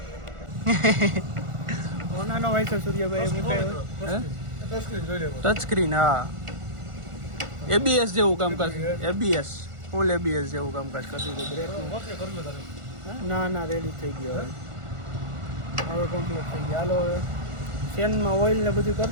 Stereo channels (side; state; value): left; late; 1.4 ms